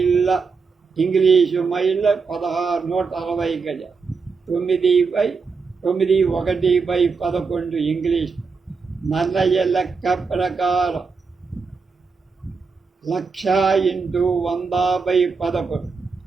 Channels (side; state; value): left; quieter; 4.9 dB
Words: ఇంగ్లీషు మైళ్ళ 1,660 గజ. 9/1/11 ఇంగ్లీష్. నన్నయ్య లెక్క ప్రకారం 1,00,000 × 100/11